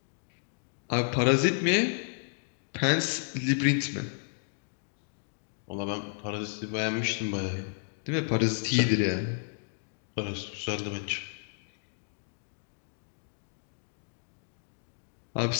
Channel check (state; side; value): silent; right; digital silence